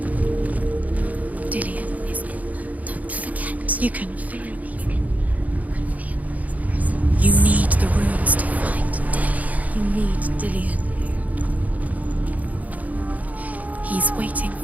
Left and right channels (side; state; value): left; late; 0.075 ms